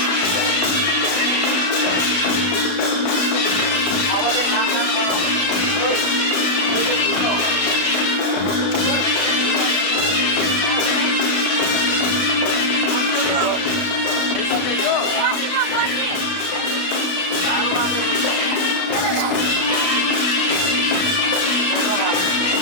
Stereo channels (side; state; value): right; late; 32 ms